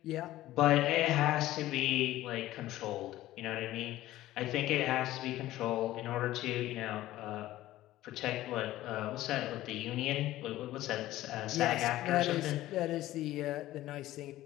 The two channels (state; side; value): quieter; right; 15.3 dB